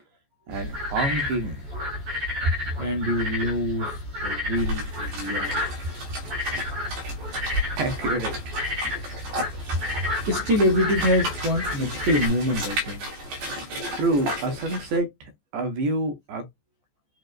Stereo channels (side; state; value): left; late; 14 ms